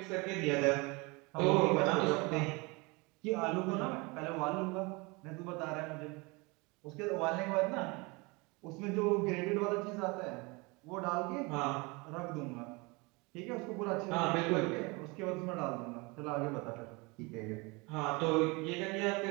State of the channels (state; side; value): quieter; left; 26.8 dB